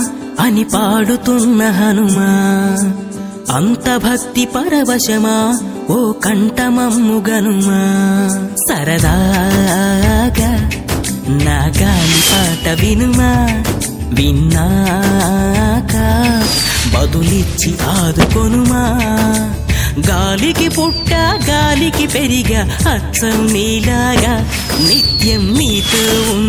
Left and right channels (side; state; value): both; identical; correlation 1.00